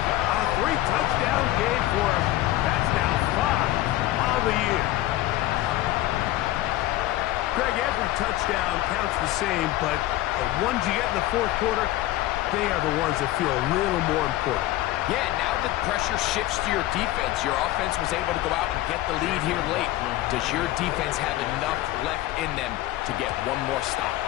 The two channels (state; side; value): quieter; right; 15.8 dB